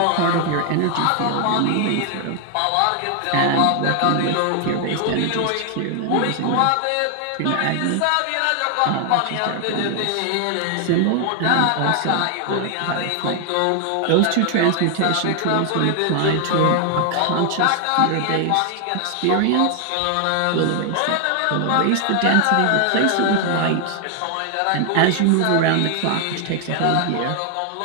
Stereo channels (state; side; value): different; both; correlation 0.00